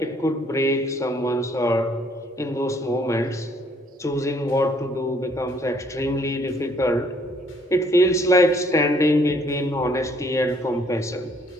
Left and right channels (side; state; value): both; normal; correlation 0.64